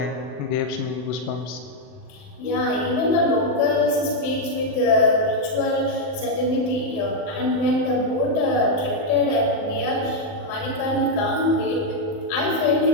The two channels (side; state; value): right; late; 39 ms